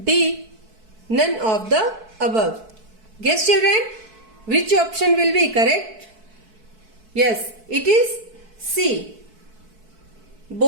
D. None of the above. Guess children, which option will be correct? Yes, it is C.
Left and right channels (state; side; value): late; left; 4.6 ms